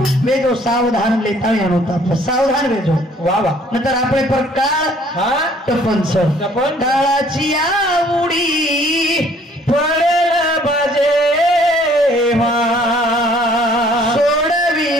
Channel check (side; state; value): both; normal; correlation 0.58